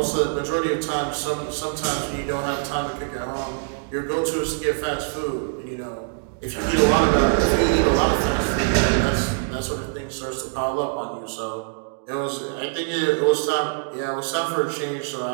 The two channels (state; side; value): silent; left; digital silence